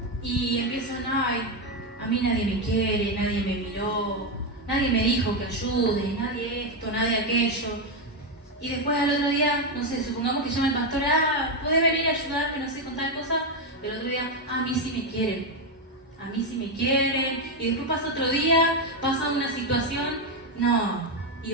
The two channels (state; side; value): normal; both; correlation 0.07